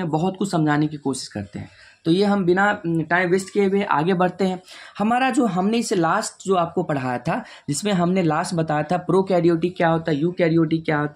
बहुत कुछ समझाने की कोशिश करते हैं। तो ये हम बिना टाइम वेस्ट किए हुए आगे बढ़ते हैं। हमारा जो हमने इसे लास्ट जो आपको पढ़ाया था, जिसमें हमने लास्ट बताया था प्रोकैरियोटिक क्या होता है, यूकैरियोटिक क्या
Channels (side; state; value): both; identical; correlation 1.00